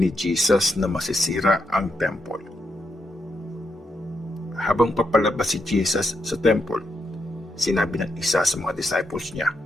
Jesus na masisira ang temple. Habang papalabas si Jesus sa temple, sinabi ng isa sa mga disciples niya,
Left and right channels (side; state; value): both; normal; correlation 0.81